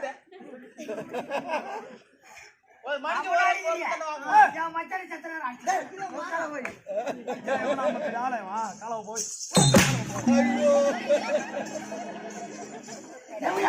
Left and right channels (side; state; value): both; identical; correlation 1.00